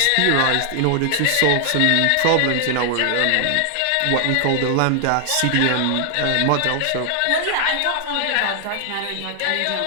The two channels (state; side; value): different; both; correlation 0.00